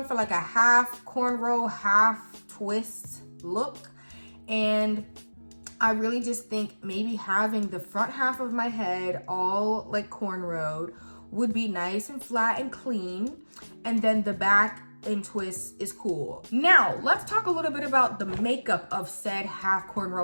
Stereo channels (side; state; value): both; inverted; correlation -1.00